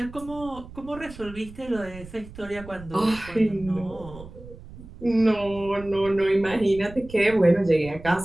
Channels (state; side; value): noise; right; rumble, 16 dB below the sound